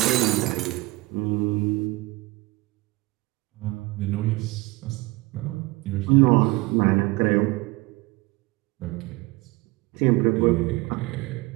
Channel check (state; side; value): quieter; left; 21.8 dB